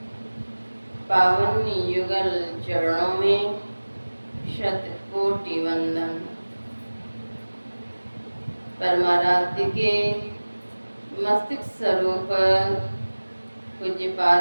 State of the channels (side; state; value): both; inverted; correlation -1.00